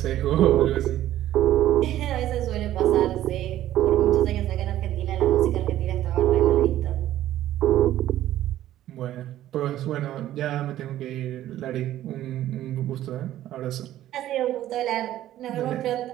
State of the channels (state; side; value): quieter; left; 13.2 dB